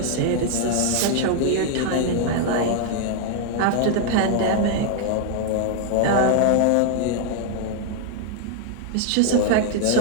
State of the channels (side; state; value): both; different; correlation 0.00